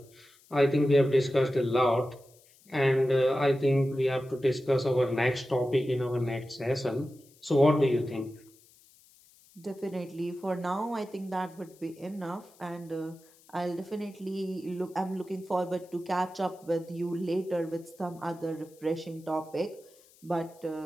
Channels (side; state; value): left; noise; hiss, 28 dB below the sound